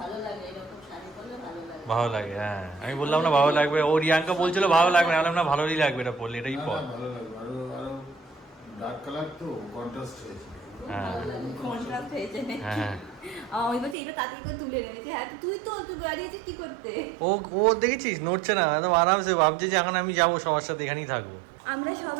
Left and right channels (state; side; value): drops out; left; at 14.0 s